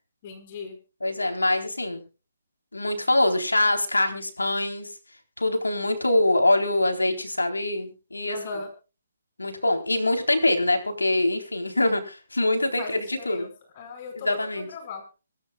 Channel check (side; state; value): both; inverted; correlation -0.94